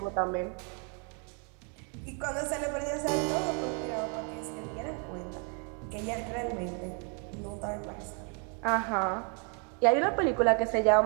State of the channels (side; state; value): left; quieter; 39.1 dB